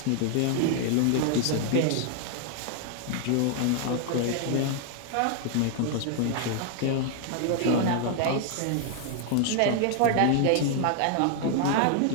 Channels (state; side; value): different; both; correlation 0.00